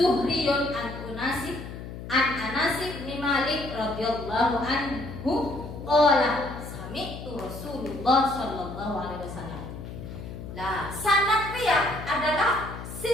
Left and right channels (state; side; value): noise; left; hum, 10 dB below the sound